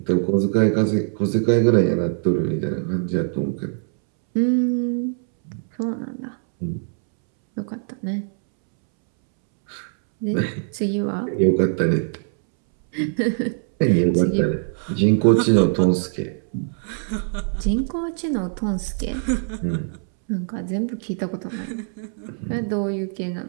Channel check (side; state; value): left; silent; 64 dB below the other